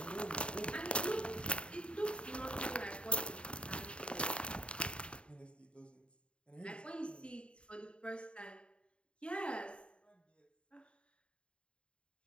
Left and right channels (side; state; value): right; late; 0.056 ms